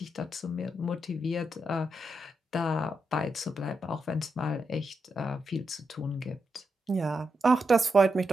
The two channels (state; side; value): normal; both; correlation 0.84